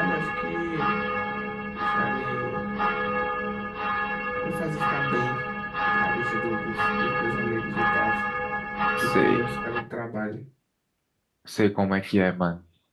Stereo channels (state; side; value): identical; both; correlation 1.00